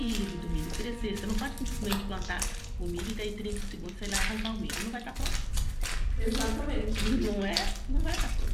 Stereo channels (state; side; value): identical; both; correlation 1.00